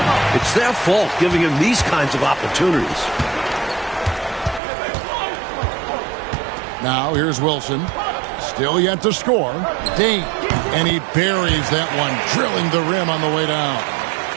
It's their fault giving him these kinds of opportunities. Now here's Wilson. Still yet to score. Dane. And he buries that one, drilling the rim on the way down.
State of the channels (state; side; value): drops out; left; at 4.6 s